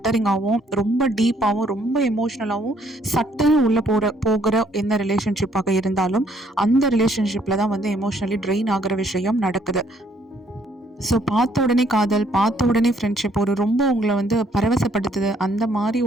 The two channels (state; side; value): normal; both; correlation 0.66